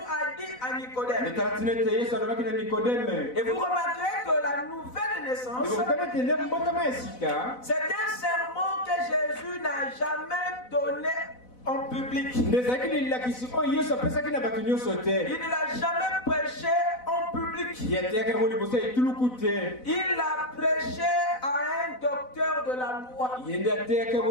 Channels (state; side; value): late; right; 4.0 ms